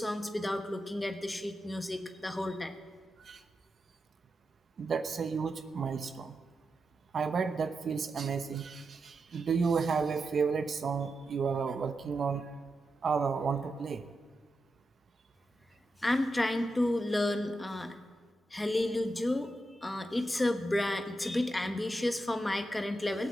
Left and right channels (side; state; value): both; normal; correlation 0.88